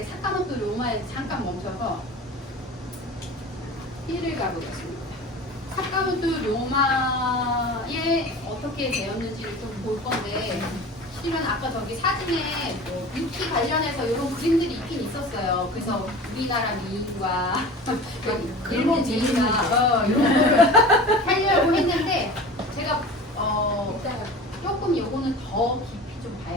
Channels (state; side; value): normal; both; correlation 0.37